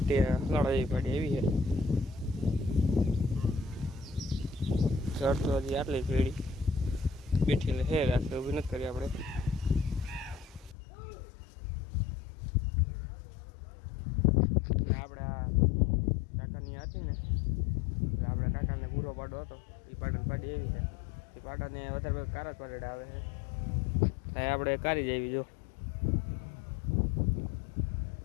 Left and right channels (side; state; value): right; drops out; at 10.8 s